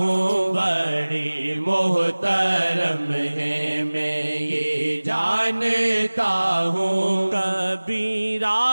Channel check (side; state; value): both; inverted; correlation -1.00